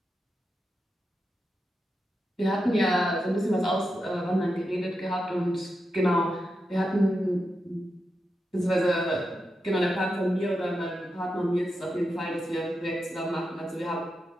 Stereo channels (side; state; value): both; normal; correlation 0.88